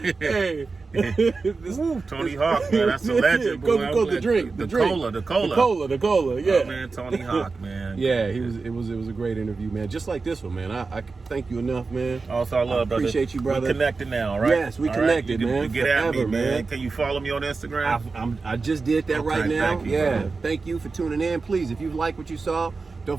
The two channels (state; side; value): quieter; left; 4.2 dB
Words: Hey. Tony Hawk, man, that's a legend, boy. Coca-Cola, the drink. The cola, yeah. Oh, man, Tony Hawk, man. Yeah, it was a great interview, man. Just like this one, man. I thank you enough, man. Also, I love, brother. Appreciate you, brother. We're connected now, right? Yes, we connected, man. You get at me, man. Can you follow me on Instagram? I just did that right now. Thank you, yeah. brother. Thank you for tuning in. Please, if you like what you saw, don't